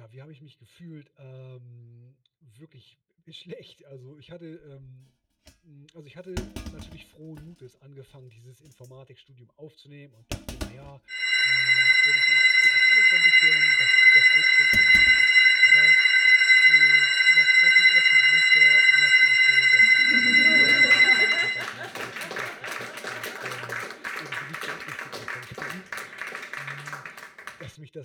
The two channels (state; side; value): identical; both; correlation 1.00